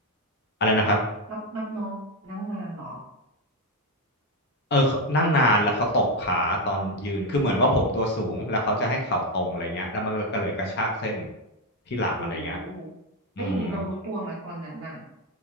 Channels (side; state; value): both; normal; correlation 0.09